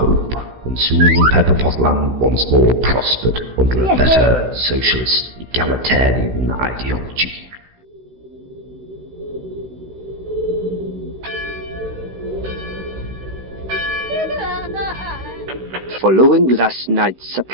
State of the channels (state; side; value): late; left; 16 ms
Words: And soon Pepperpotland once more prospered under a better socialist, egalitarian ideology. Following last night's